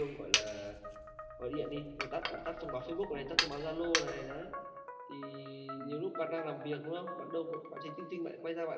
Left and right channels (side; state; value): both; identical; correlation 1.00